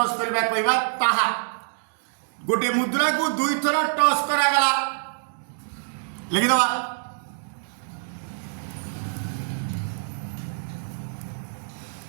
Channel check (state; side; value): silent; left; digital silence